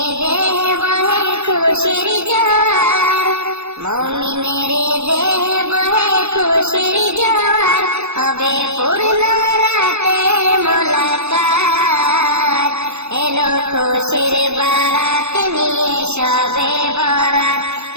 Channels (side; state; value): left; late; 0.81 ms